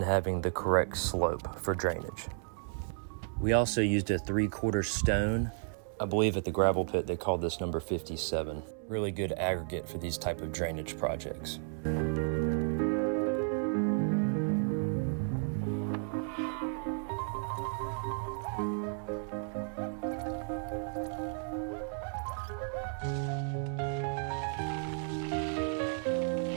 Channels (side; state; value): left; silent; 56 dB below the other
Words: having the correct slope for drainage. We also used a 3/4 stone. I believe at the gravel pit they called this number 57. Really good aggregate for these type of drainage projects.